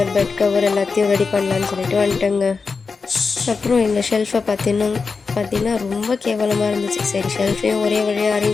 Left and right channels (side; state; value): right; quieter; 4.8 dB